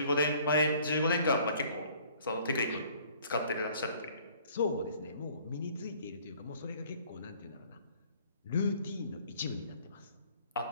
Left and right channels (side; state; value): both; inverted; correlation -0.56